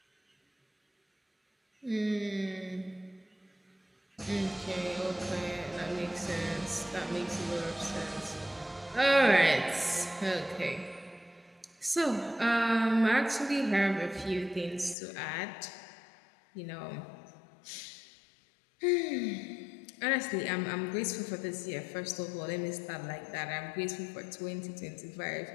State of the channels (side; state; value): right; drops out; at 15.0 s